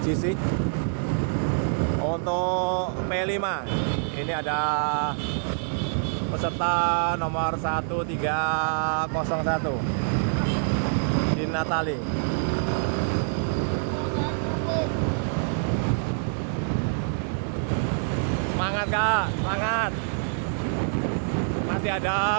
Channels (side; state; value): left; silent; digital silence